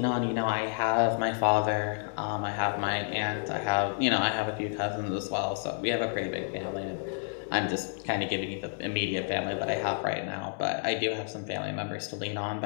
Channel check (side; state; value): right; silent; 58 dB below the other